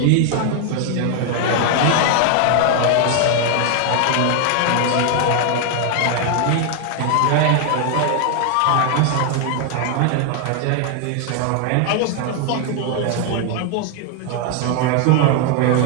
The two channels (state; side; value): different; both; correlation 0.00